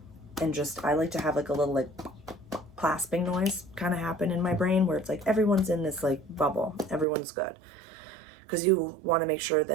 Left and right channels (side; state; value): left; drops out; at 7.1 s